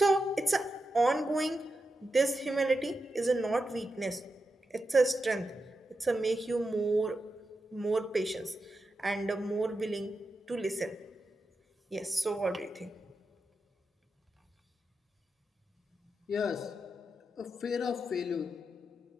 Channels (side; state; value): both; normal; correlation 0.88